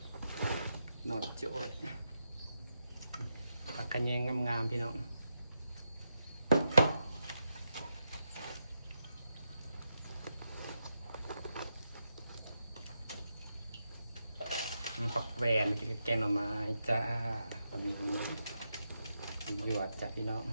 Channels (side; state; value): both; inverted; correlation -0.85